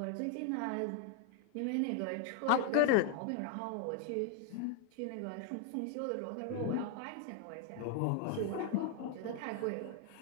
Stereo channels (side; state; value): both; different; correlation 0.00